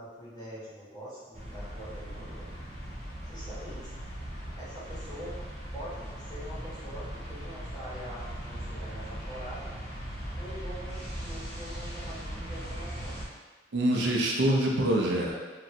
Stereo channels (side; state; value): both; normal; correlation 0.62